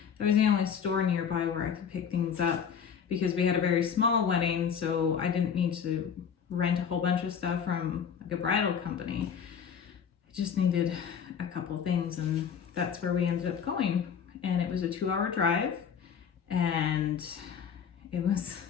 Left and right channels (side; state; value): right; quieter; 7.3 dB